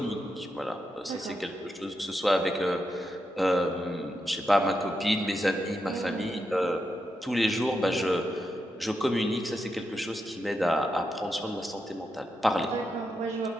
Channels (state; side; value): normal; both; correlation 0.85